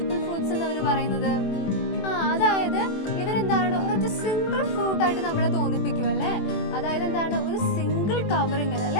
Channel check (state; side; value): late; right; 21 ms